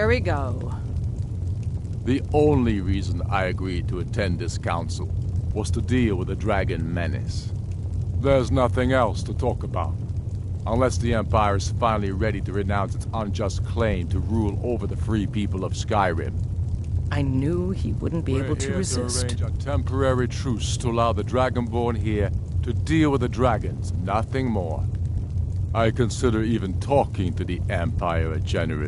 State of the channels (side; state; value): both; identical; correlation 1.00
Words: we go. The only reason I agreed to attend this council was to deal with the dragon menace. There's nothing else to talk about. Unless the Empire is finally ready to renounce its unjust claim to rule over the free people of Skyrim. I knew he wouldn't be able to resist. We're here to arrange a temporary truce to allow the Dragonborn here to deal with the dragons, nothing more. I consider even talking to the Empire a